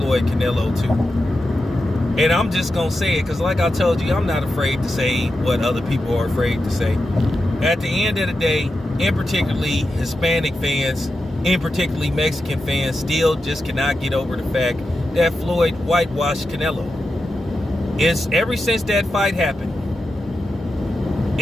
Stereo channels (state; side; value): normal; both; correlation 0.89